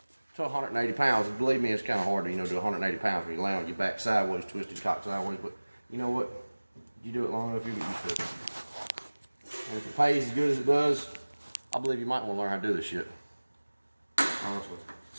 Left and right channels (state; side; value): inverted; both; correlation -1.00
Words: to 180 pounds. And believe me, it's kind of hard to, do 180 pounds when you lay on your back sideways, twisted cock sideways. But you know what? You do it long enough, you get used to it. And if it pays as good as it does, I believe you might want to learn how to do this shit. Honestly.